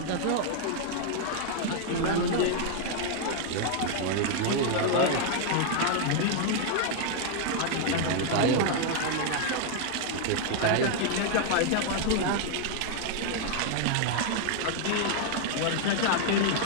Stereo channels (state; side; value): different; both; correlation 0.00